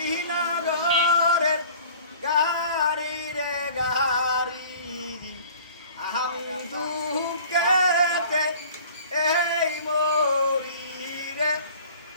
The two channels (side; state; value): both; inverted; correlation -0.47